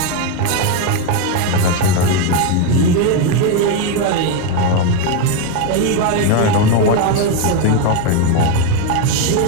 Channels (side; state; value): both; different; correlation 0.02